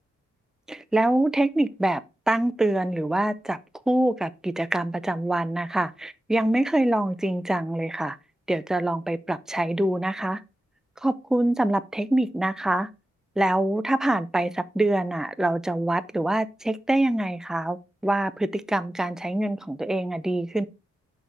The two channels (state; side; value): normal; both; correlation 0.95